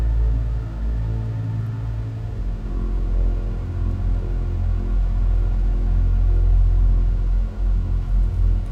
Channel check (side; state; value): both; identical; correlation 1.00